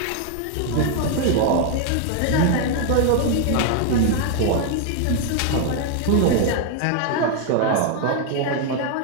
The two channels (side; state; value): both; different; correlation 0.00